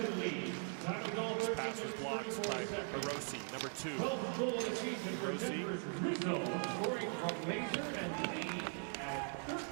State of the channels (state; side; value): silent; left; 51 dB below the other